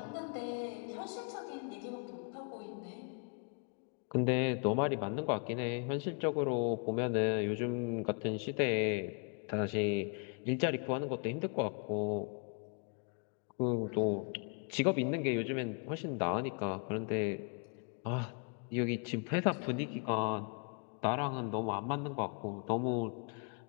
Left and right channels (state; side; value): quieter; right; 37.8 dB